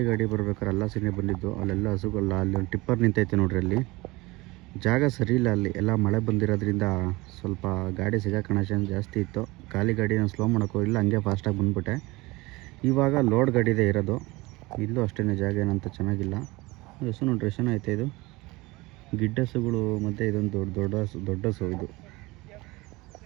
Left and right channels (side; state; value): left; quieter; 22.2 dB